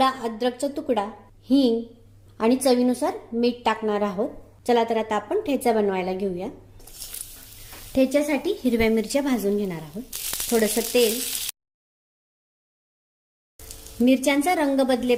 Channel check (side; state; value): both; identical; correlation 1.00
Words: अद्रकचा तुकडा, हिंग आणि चवीनुसार मीठ टाकणार आहोत. चला तर आता आपण ठेचा बनवायला घेऊया. ठेच्यासाठी हिरव्या मिरच्या भाजून घेणार आहोत. थोडंसं तेल, मिरच्यांचा रंग